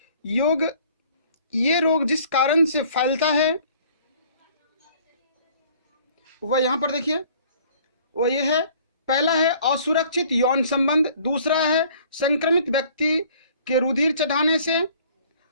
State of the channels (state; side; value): inverted; both; correlation -0.54